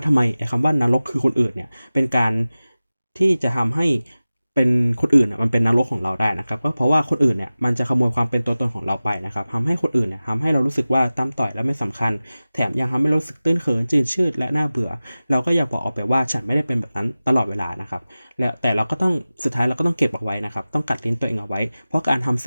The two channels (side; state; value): both; inverted; correlation -0.97